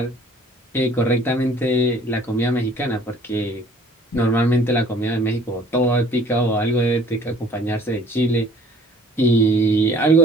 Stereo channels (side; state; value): both; normal; correlation 0.54